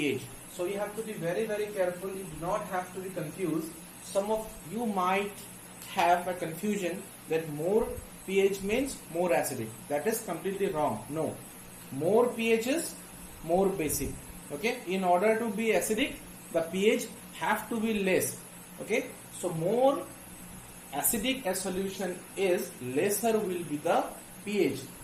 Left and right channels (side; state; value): both; identical; correlation 1.00